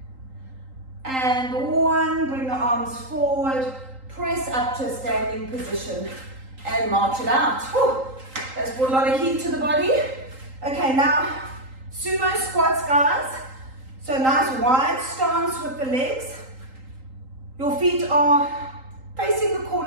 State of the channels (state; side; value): late; left; 3.8 ms